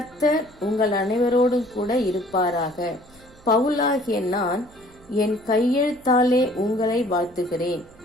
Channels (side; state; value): right; noise; hum, 27 dB below the sound